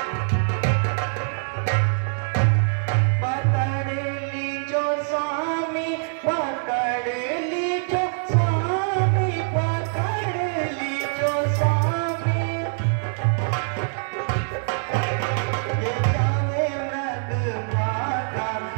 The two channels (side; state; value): left; silent; digital silence